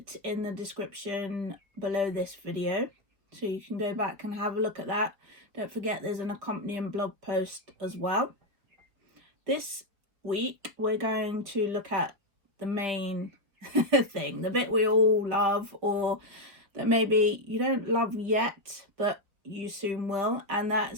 in the description below this video, so you can go back and have a look at that. Don't forget there's an accompanying blog post as well. This week we're going to look at the main thing, the bit we all love, or that maybe you don't love yet but you soon will, and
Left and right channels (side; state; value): left; late; 4.9 ms